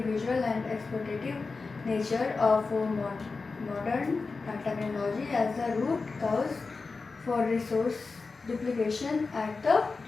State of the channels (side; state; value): right; quieter; 4.2 dB